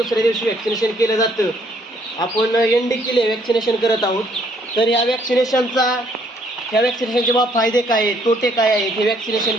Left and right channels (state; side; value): normal; both; correlation 0.66